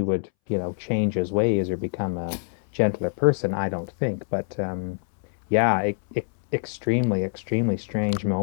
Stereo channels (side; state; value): right; silent; 62 dB below the other